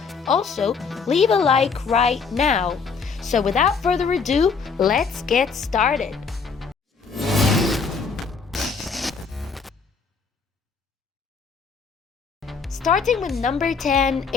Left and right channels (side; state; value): right; quieter; 5.3 dB